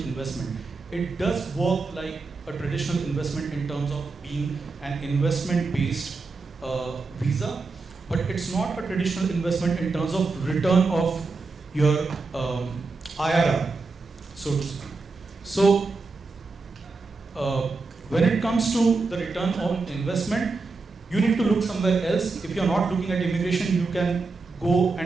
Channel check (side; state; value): left; quieter; 4.0 dB